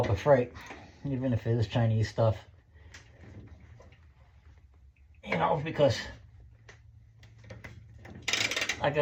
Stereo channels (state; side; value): identical; both; correlation 1.00